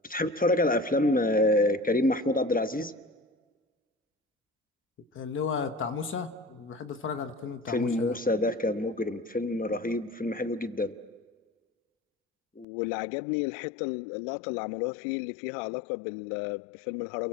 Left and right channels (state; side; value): drops out; right; at 12.7 s